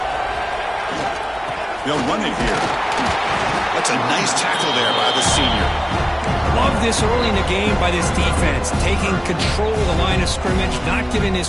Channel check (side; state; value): both; identical; correlation 1.00